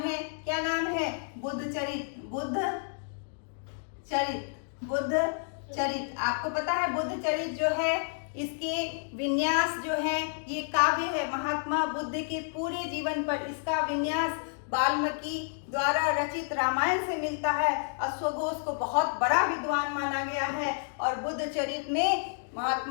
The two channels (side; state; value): right; silent; digital silence